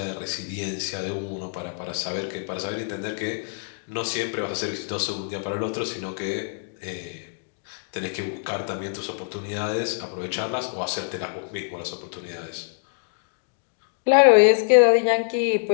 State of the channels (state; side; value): silent; right; digital silence